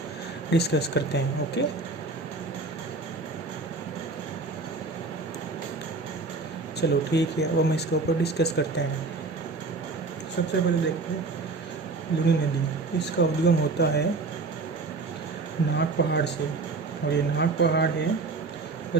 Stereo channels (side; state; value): left; quieter; 3.7 dB